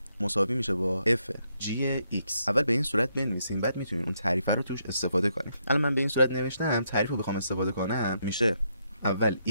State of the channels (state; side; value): inverted; both; correlation -0.77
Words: مساوی میشه با f g x. اول به این صورت بنویسیم، بعد میتونین اون تعریفه رو توش استفاده کنیم. الان من به این صورت نوشتم، تعریف رو بخوام استفاده کنم میشه اول